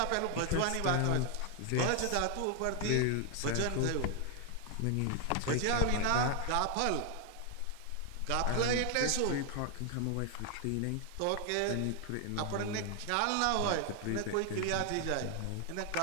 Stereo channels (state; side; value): different; both; correlation 0.00